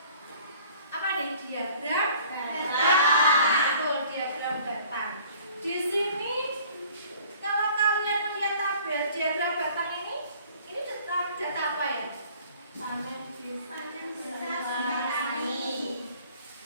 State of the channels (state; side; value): inverted; both; correlation -0.52